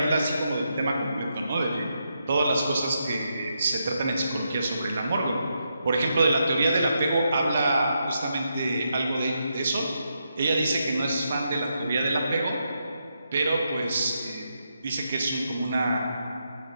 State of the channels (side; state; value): both; inverted; correlation -0.82